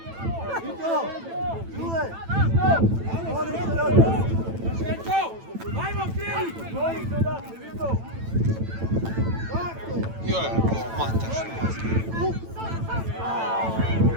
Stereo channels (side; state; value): left; late; 9.0 ms